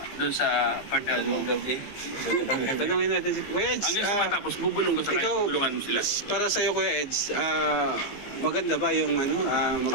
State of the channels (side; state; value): right; late; 15 ms